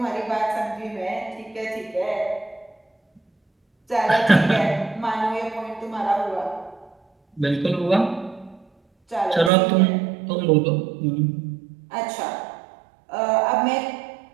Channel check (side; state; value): left; drops out; at 9.5 s